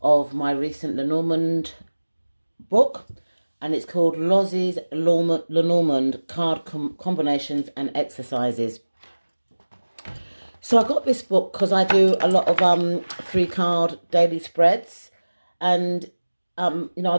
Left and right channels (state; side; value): inverted; both; correlation -1.00